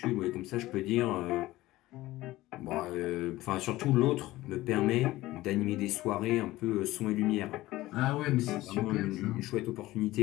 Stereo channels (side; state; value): right; quieter; 17.4 dB